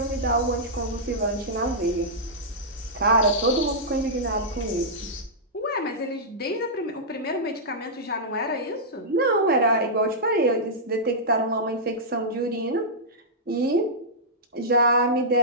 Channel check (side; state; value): both; normal; correlation -0.11